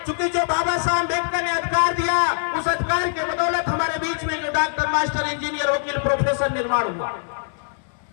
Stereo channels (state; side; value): silent; right; digital silence